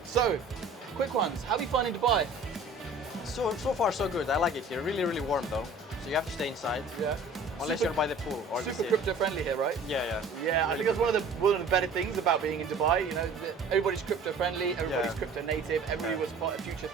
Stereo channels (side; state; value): left; quieter; 3.4 dB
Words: So, quick ones. How are you finding Dubai? So far so good. I like it here. Really, really warm though. So you have to stay inside. Yeah. Unless you're by the pool or the Super sea. crypto friendly here, right? Yeah. Yeah, I Really think that's one of the better things about being in Dubai. You know, everybody's crypto friendly, everybody's crypto native, everybody was part of future